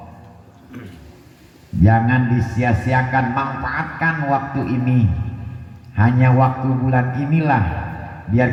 jangan disia-siakan, manfaatkan waktu ini. Hanya waktu bulan inilah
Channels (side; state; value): both; identical; correlation 1.00